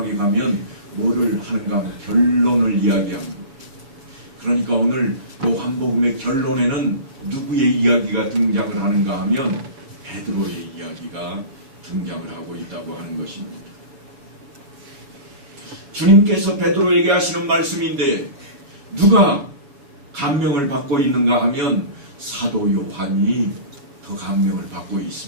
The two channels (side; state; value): left; late; 7.2 ms